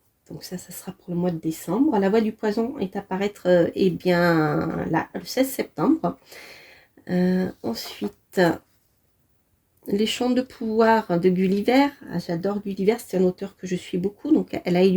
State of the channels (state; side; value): identical; both; correlation 1.00